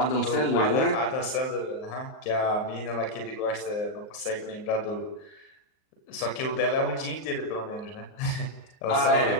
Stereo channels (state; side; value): late; right; 38 ms